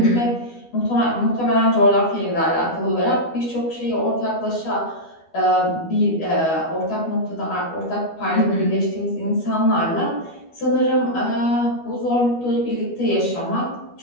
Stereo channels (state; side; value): late; right; 12 ms